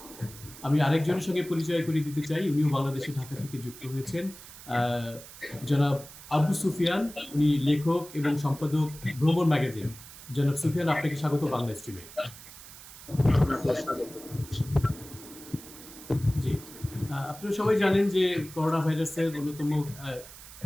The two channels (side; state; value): right; noise; hiss, 17 dB below the sound